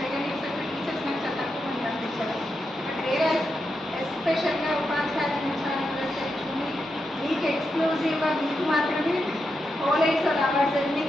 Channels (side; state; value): both; normal; correlation 0.86